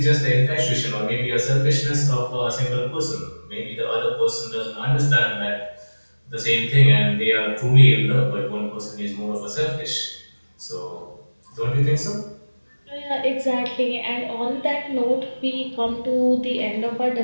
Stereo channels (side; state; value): both; inverted; correlation -1.00